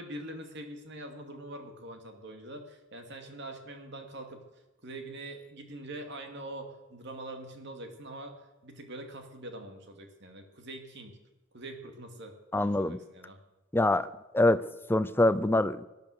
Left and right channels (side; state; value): both; normal; correlation 0.76